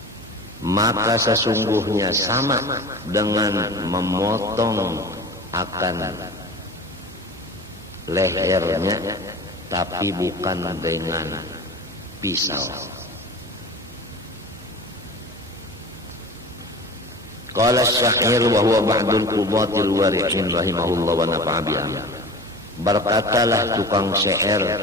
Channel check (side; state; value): right; noise; hum, 27 dB below the sound